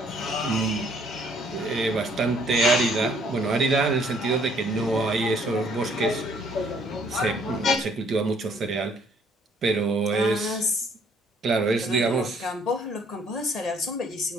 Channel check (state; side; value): normal; both; correlation 0.63